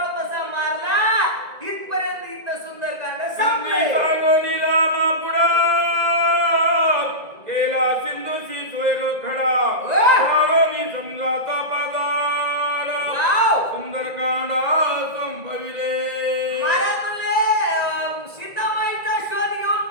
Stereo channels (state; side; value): late; left; 1.9 ms